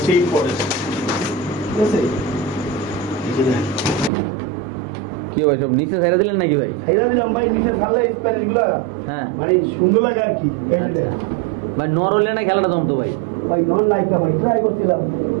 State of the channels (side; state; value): left; drops out; at 4.1 s